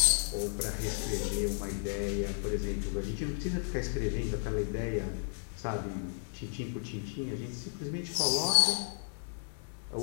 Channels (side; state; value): right; silent; digital silence